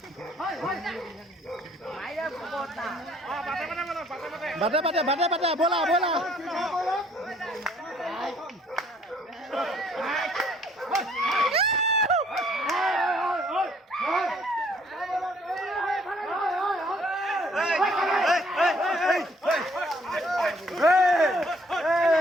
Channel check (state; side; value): normal; both; correlation 0.62